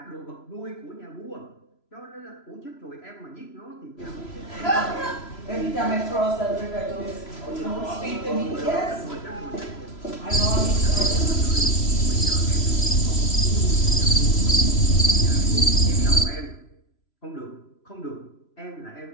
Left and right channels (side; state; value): right; late; 3.0 ms